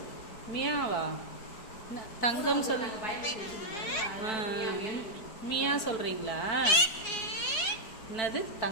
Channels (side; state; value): right; late; 5.0 ms